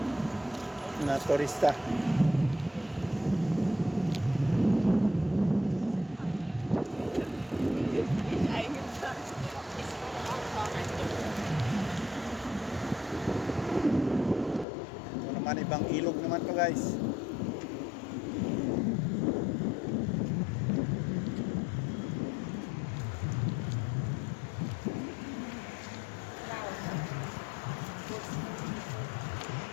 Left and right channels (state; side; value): drops out; right; at 14.7 s